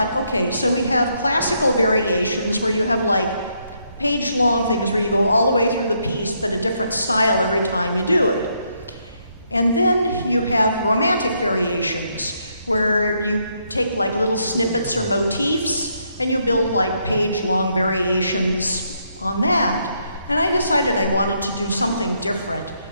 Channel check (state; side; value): inverted; both; correlation -0.75